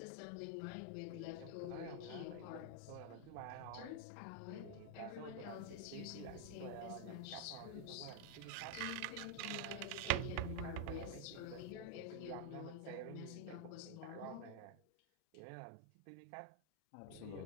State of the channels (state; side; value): different; both; correlation 0.00